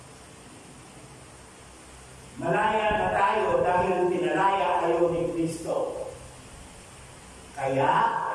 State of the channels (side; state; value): both; identical; correlation 1.00